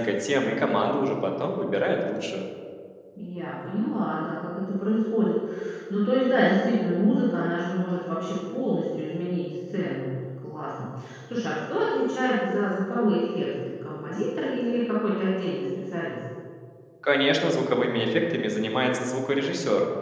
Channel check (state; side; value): identical; both; correlation 1.00